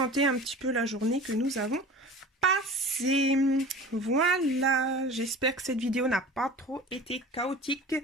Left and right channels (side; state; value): both; normal; correlation 0.39